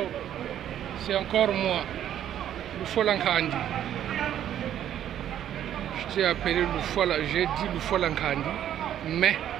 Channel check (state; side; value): quieter; left; 10.8 dB